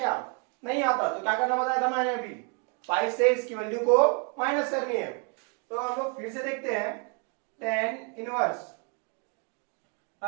नहीं आता। तो क्या करना बताया था मैंने अभी, पाई से इसकी वैल्यू को माइनस करनी है। तो हम लोग फिर से देखते हैं, टेन इनवर्स,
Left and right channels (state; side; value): quieter; left; 35.3 dB